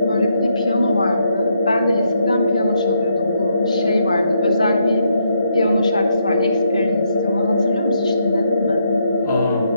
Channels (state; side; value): inverted; both; correlation -0.77